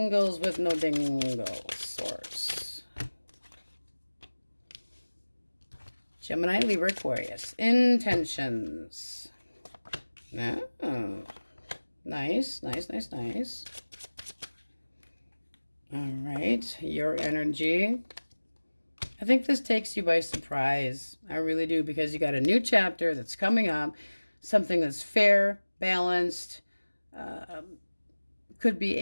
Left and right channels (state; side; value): inverted; both; correlation -1.00